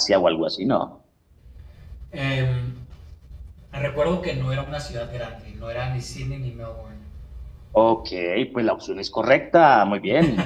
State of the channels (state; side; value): identical; both; correlation 1.00